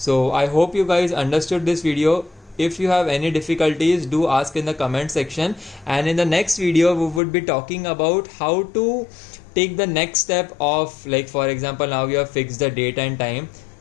I hope you guys understood this video. If you have any difficulties, do ask in the comment section, and in the next video we would be talking about how to take the next step of, like for example, now you have fixed the date and time.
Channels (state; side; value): drops out; right; at 7.2 s